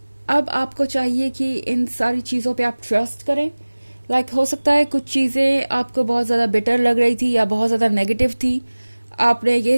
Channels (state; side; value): inverted; both; correlation -1.00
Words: अब आपको चाहिए कि इन सारी चीज़ों पे आप ट्रस्ट करें। हो सकता है कुछ चीज़ें आपको बहुत ज़्यादा बिटर लग रही थी या बहुत ज़्यादा नेगेटिव थी। आपने